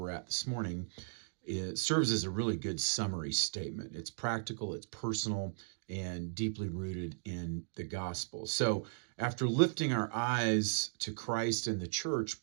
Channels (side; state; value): left; silent; digital silence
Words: at this morning, it serves as a really good summary statement. It's practical, it's personal, and deeply rooted in the gospel. So after lifting our eyes to Christ and the church,